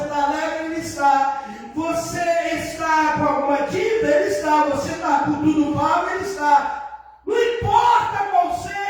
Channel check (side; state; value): both; identical; correlation 1.00